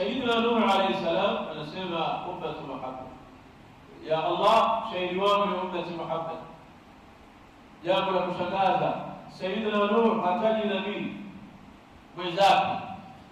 Nuh alayhi salam anasema ummati Muhammad, ya Allah, shahidi wangu ni ummati Muhammad. Jambo la kushangaza, Sayyidina Nuh hataji nabii mwenzake,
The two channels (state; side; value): identical; both; correlation 1.00